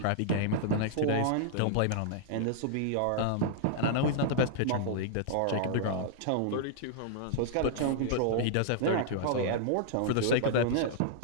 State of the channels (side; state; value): both; different; correlation -0.01